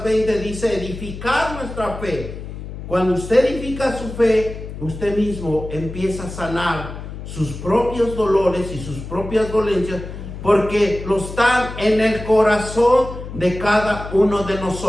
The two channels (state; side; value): noise; left; hum, 10 dB below the sound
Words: 20 dice edificar nuestra fe. Cuando usted edifica su fe, usted mismo empieza a sanar sus propios dolores y sus propias dolencias, porque lo están en el corazón de cada uno de